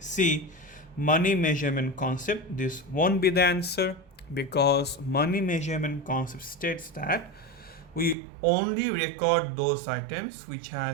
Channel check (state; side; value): drops out; left; at 8.2 s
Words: money measurement concept. This won't be the answer, because money measurement concept states that we only record those items which